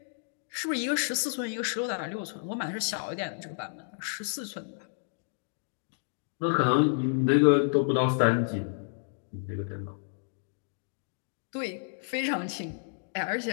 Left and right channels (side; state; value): right; silent; digital silence